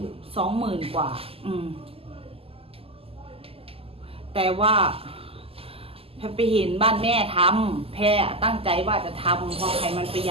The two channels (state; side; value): late; left; 0.28 ms